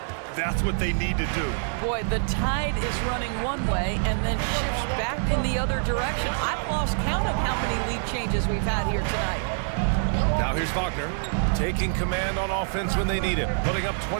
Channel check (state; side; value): silent; left; 61 dB below the other